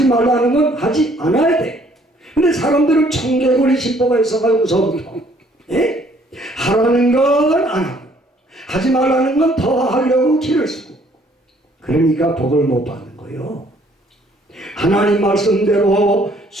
말라는 건 하지 않아야 돼. 근데 사람들은 청개구리 신보가 있어가지고 무서운 거. 예? 하라는 건 안 하고 하지 말라는 건 더 하려고 길을 쓰고, 그러니까 복을 못 받는 거예요. 하나님 말씀대로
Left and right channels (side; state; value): both; normal; correlation 0.62